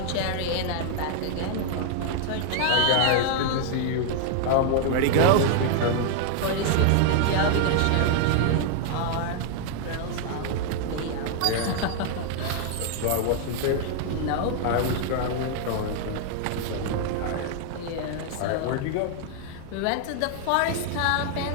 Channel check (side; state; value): both; different; correlation 0.00